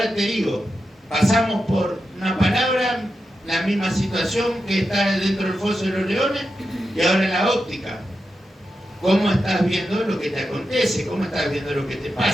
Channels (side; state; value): both; normal; correlation 0.89